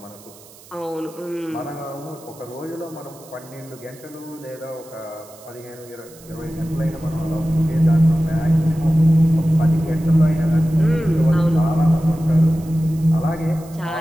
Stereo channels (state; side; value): noise; right; hiss, 23 dB below the sound